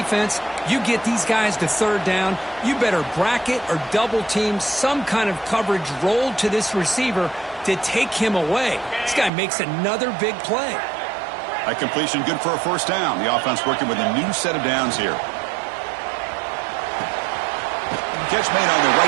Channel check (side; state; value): left; drops out; at 9.3 s